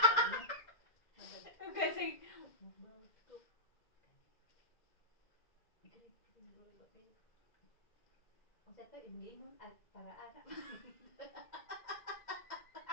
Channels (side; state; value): right; late; 2.0 ms